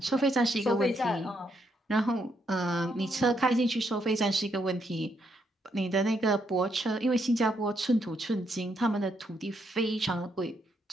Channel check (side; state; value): both; normal; correlation 0.76